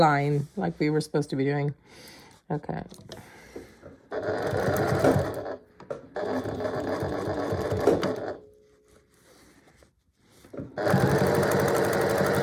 like we were supposed to be doing. Okay.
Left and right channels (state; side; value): identical; both; correlation 1.00